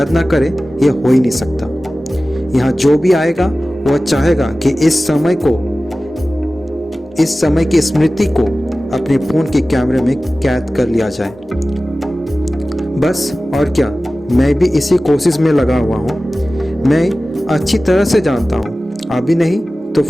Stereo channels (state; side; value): normal; both; correlation 0.96